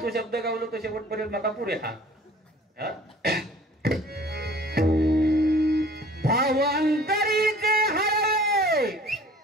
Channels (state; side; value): normal; both; correlation 0.50